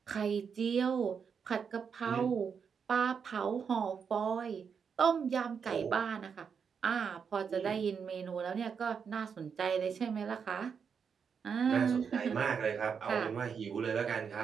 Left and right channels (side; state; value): left; quieter; 6.5 dB